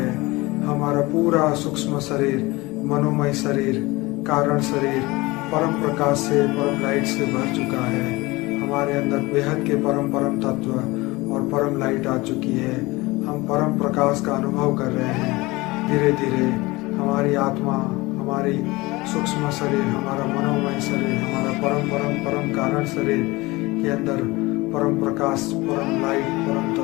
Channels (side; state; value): right; quieter; 22.0 dB